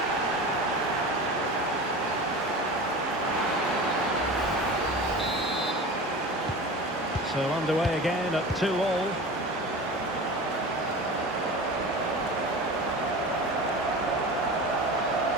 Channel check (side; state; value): both; normal; correlation 0.33